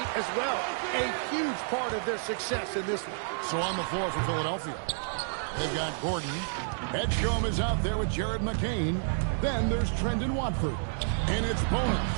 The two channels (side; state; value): left; silent; digital silence